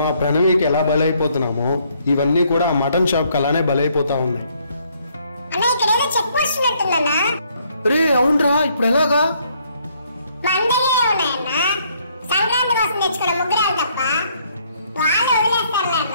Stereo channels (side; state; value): both; inverted; correlation -0.68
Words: ఆ ప్రణవికి ఎలా బలైపోతున్నామో ఇవన్నీ కూడా ఆ మటన్ షాప్కి అలానే బలైపోతా ఉన్నాయి. రే అవునరా, ఇప్పుడు ఎలాగా?